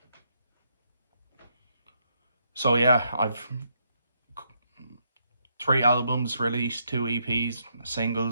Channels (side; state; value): both; inverted; correlation -0.75